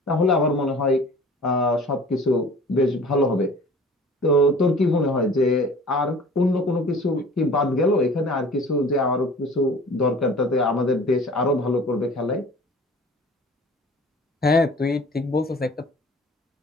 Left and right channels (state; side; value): normal; both; correlation 0.46